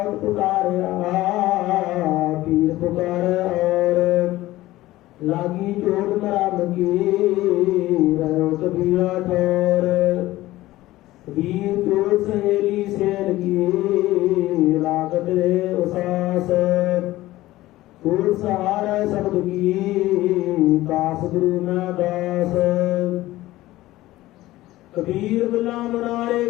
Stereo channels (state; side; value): quieter; right; 16.8 dB